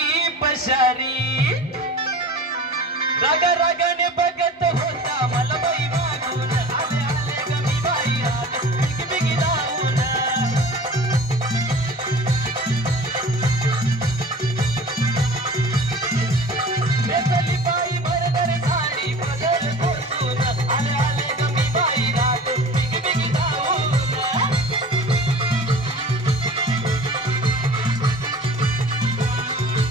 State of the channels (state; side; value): normal; both; correlation 0.40